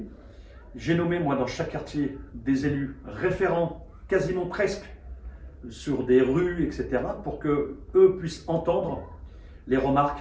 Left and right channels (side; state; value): both; identical; correlation 1.00